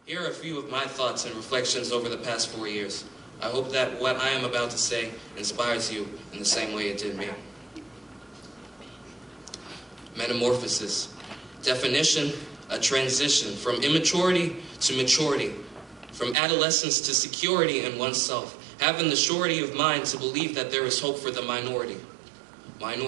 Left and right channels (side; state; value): left; drops out; at 16.4 s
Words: Here are a few of my thoughts and reflections over the past 4 years. I hope that what I am about to say inspires you in the same way it did me. Metamorphosis. Definition: a transition from immaturity to maturity, from adolescence to security in oneself, having the surety of mind to believe that there is hope for the minority.